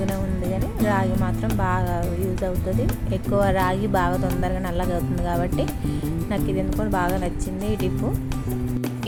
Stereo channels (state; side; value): identical; both; correlation 1.00